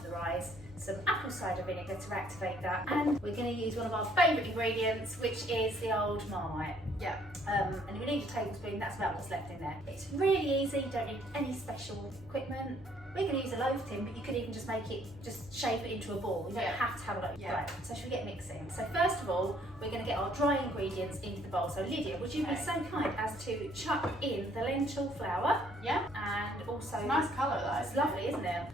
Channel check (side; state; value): right; noise; hum, 21 dB below the sound